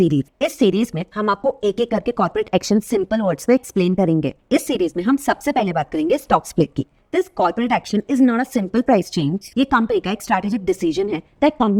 इस सीरीज में हम आपको एक एक करके कॉर्पोरेट एक्शन सिंपल वर्ड्स में एक्सप्लेन करेंगे। इस सीरीज में हम सबसे पहले बात करेंगे स्टॉक स्प्लिट की। This corporate action is not a simple price change. ये कंपनी का एक strategic decision है that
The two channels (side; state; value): both; identical; correlation 1.00